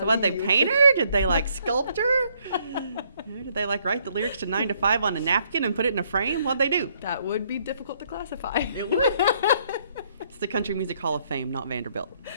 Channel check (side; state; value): both; inverted; correlation -0.69